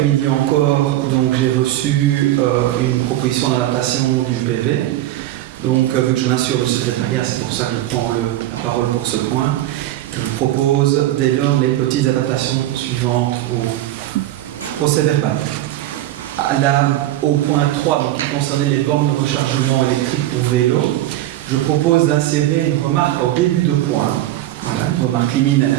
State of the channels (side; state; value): left; quieter; 14.2 dB